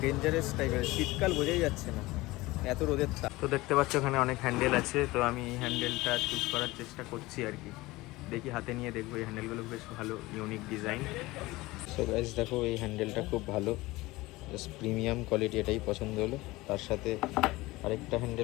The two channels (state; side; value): quieter; right; 20.2 dB